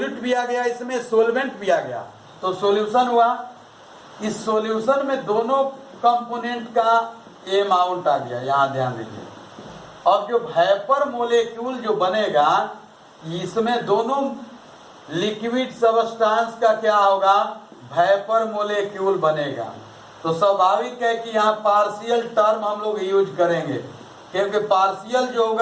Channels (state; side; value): identical; both; correlation 1.00